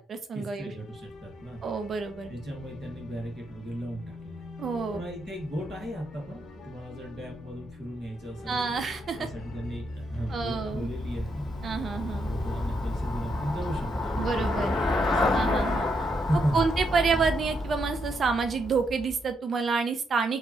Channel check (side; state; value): both; normal; correlation 0.79